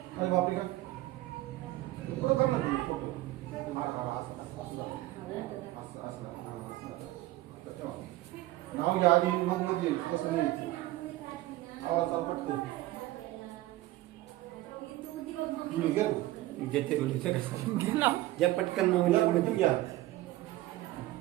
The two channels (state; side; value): quieter; left; 17.1 dB